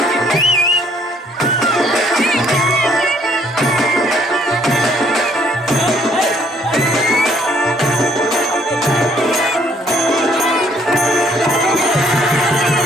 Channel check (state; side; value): normal; both; correlation 0.64